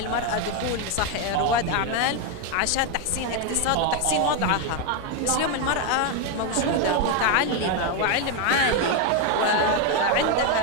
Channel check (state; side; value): different; both; correlation 0.02